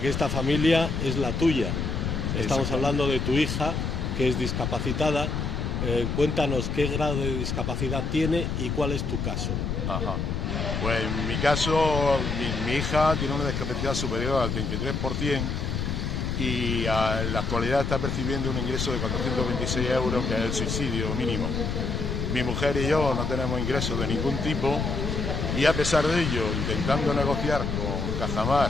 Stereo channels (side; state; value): left; noise; rumble, 2 dB below the sound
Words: esta familia es la tuya. Estamos hablando de tu hija, que es discapacitada. Cuéntanos qué grado de discapacidad tiene y cuál es tu caso. Ajá. Pues en mi caso, mi hija tiene una discapacidad superior al 33% y en la actualidad está percibiendo un ingreso de 426 euros, que es el subsidio mínimo. Mi mujer y yo no tenemos ingresos de ningún tipo y a pesar de ello, intentando negociar con Cajamar